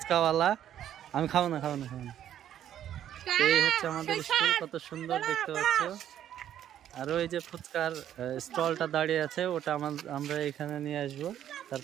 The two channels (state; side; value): quieter; left; 10.8 dB